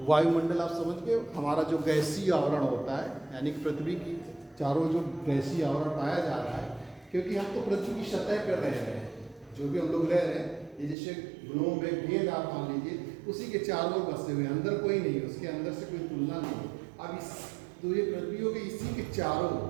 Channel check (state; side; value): drops out; left; at 11.0 s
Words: वायुमंडल आप समझ गए, हमारा जो गैसीय आवरण होता है, यानी कि पृथ्वी की चारों जो गैसीय आवरण पाया जा रहा है, क्योंकि हम तो पृथ्वी की सतह पर रह रहे हैं, जो भी हम लोग रह रहे हैं, ये जैसे ग्लोब है, गेंद आप मान लीजिए, उसी के चारों बसे हुए, अंदर कोई नहीं है, उसके अंदर से कोई तुलना नहीं है। अब इस तो ये पृथ्वी हो गई, इसी के चारों